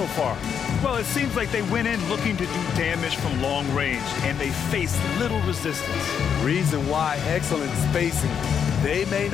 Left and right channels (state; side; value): quieter; right; 7.7 dB